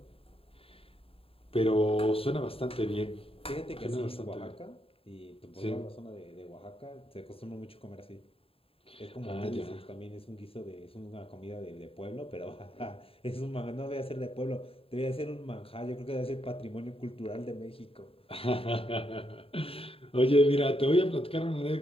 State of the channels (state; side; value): late; right; 0.27 ms